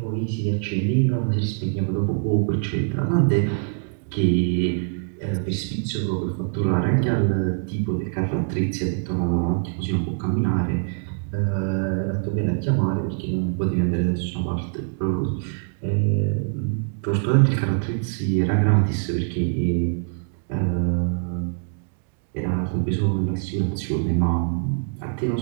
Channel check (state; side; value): silent; left; 63 dB below the other